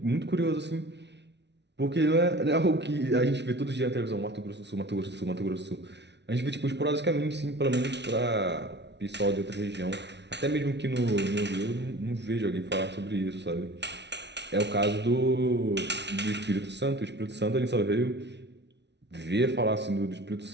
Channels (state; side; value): late; left; 0.50 ms